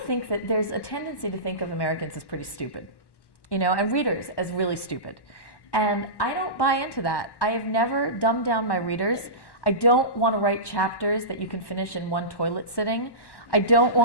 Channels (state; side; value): late; right; 1.1 ms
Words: that there's a tendency to think of Americans as pretty stupid, and readers as really stupid. And I don't buy into that. I have never dumbed down my readers. I don't want to write chapters that you can finish in one toilet sitting. I don't